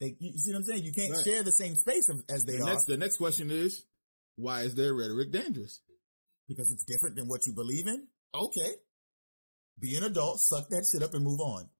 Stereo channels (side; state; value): both; inverted; correlation -1.00